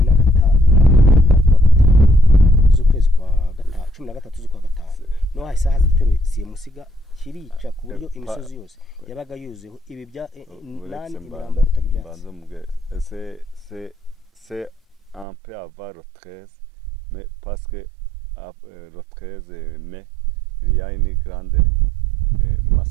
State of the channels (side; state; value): left; drops out; at 15.2 s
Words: z'ukwezi kwa gatanu 13 z'ukwa gatanu no hari saha z'igitero simusiga kirica ku buryo imisozi yose yabaga yuzuyeho ibi bya nani imirambo y'ubutaka ibyatsi. c'est un peu avant le 13, mais parce que le 13 mai il y a une grande